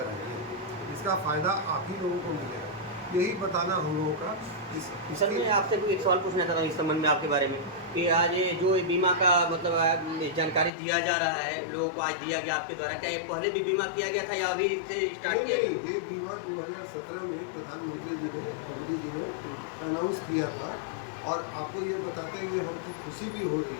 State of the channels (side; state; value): right; drops out; at 10.7 s